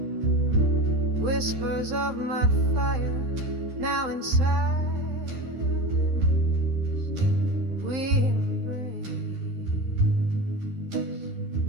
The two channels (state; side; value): late; left; 12 ms